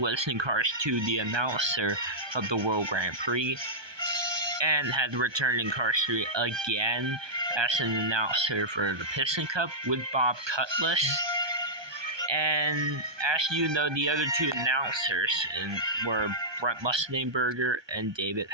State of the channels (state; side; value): late; left; 1.2 ms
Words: was in Cars 2 the announcer of the World Grand Prix, and had returned in Cars 3 again as an announcer for the Piston Cup with Bob Cutlass. And as you know, the other two announcers were Brent Musningberger and David